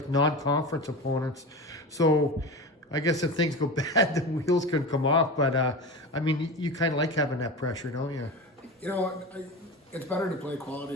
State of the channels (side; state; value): both; normal; correlation 0.27